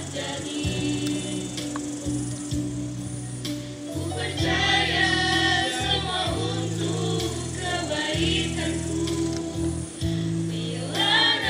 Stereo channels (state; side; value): identical; both; correlation 1.00